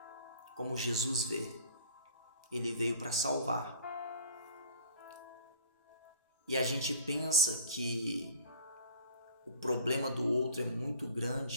Como Jesus vê. Ele veio para salvar. E a gente pensa que o problema do outro é muito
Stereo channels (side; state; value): both; inverted; correlation -0.45